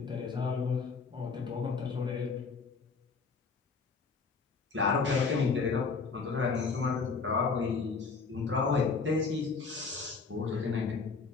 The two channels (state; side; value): quieter; right; 4.8 dB